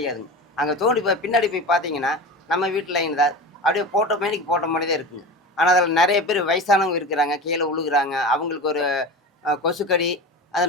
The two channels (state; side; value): normal; both; correlation 0.29